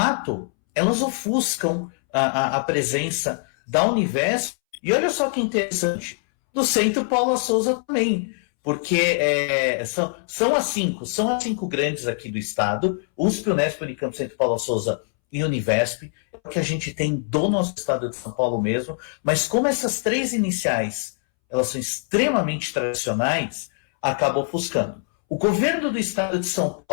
elas ofuscam a presença da Univesp. E olha só que interessante, do Centro Paula Souza também, porque são as cinco grandes aqui do estado, USP, Unesp, Unicamp, Centro Paula Souza e Univesp, é o que a gente tem do nosso estado de São Paulo mesmo, mas como essas três iniciais, elas são extremamente tradicionais, acaba ofuscando. O governo do estado de São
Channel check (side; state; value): right; silent; 63 dB below the other